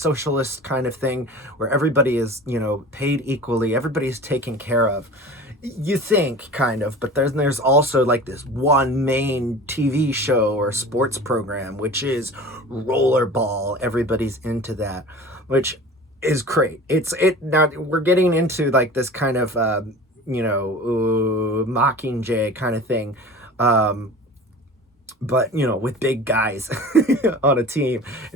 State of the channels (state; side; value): normal; both; correlation 0.39